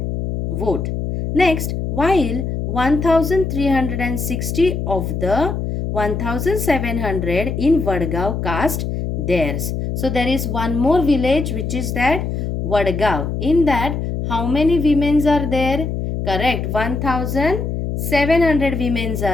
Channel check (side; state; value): left; noise; hum, 3 dB below the sound